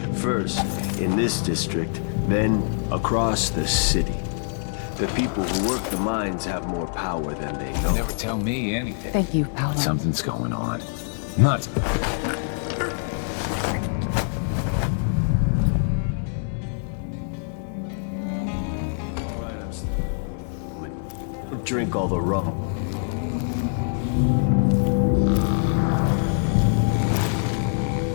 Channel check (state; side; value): silent; right; digital silence